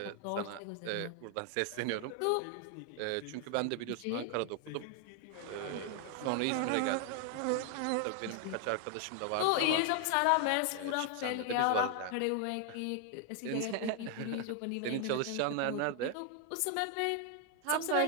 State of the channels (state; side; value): different; both; correlation 0.00